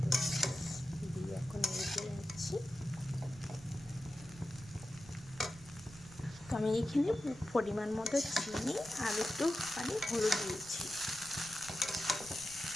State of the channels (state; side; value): noise; right; rumble, 18 dB below the sound